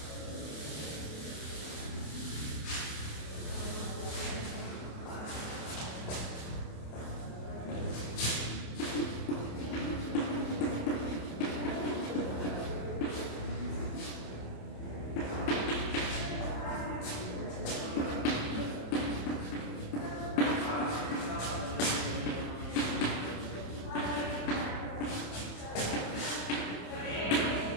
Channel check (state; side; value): late; right; 27 ms